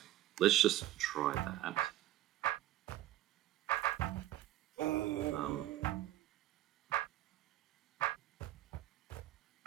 Let's just try that.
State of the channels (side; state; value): left; quieter; 14.6 dB